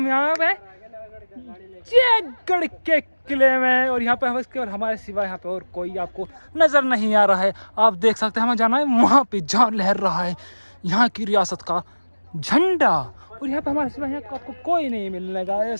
यहाँ पे जयगढ़ के किले में, और यहाँ पे हम इसके और हमारे सिवा यहाँ पे और कोई आपको नजर नहीं आ रहा है। आप देख सकते हैं हमें जाना है वहाँ पे जहाँ लहर रहा है यहाँ की रियासत का झंडा, और यहाँ पे हमारे सिवा यहाँ आपको कोई नहीं मिलने का। ये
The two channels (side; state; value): both; inverted; correlation -1.00